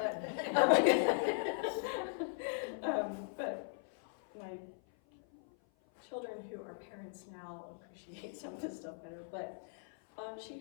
but my children who are parents now appreciate some of this stuff better. But she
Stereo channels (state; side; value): silent; right; 52 dB below the other